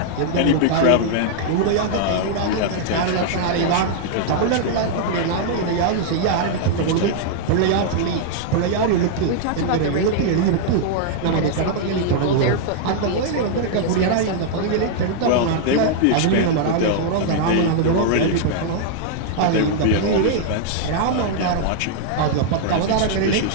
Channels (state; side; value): different; both; correlation -0.01